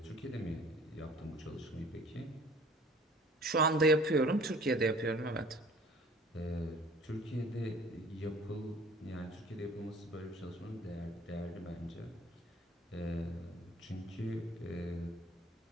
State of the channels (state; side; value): normal; both; correlation 0.50